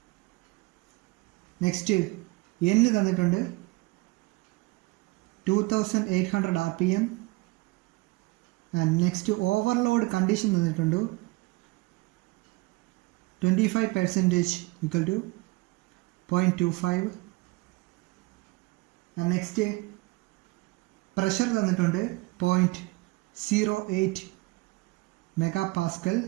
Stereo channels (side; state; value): left; quieter; 23.7 dB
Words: Next n തന്നിട്ടുണ്ട് 2800 rpm. And next overload condition തന്നിട്ടുണ്ട് 25% equal to 0.25. and next pressure തന്നിട്ടുണ്ട് 0.08 megapascal.